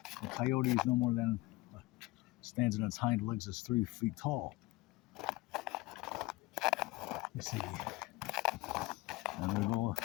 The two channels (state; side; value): quieter; right; 20.3 dB